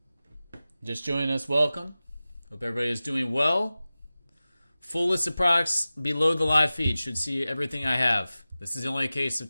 Just joining us, welcome. Hope everybody is doing well. Full list of products below the live feed. Should see everything I have. This is the only case of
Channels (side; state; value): both; inverted; correlation -0.96